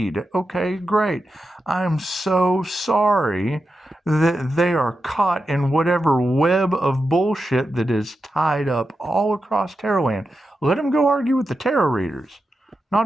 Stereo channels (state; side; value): normal; both; correlation 0.89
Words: Okay, great. I'm so sorry that they are caught in whatever web of bullshit that is tied up all across Tarotland. Let them go argue with the tarot readers,